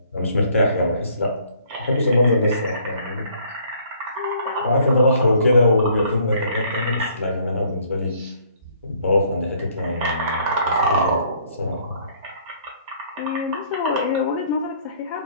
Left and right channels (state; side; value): inverted; both; correlation -0.61